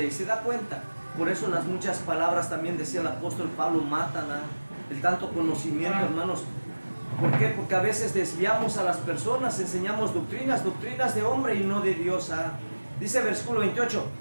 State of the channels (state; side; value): inverted; both; correlation -1.00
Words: ¿Se da cuenta? Por eso las muchas palabras, también decía el apóstol Pablo, matan el tanto conocimiento, hermanos. ¿Por qué? Porque a veces desviamos a las personas, enseñamos doctrinas de hombre y no de Dios. Dice el versículo 28,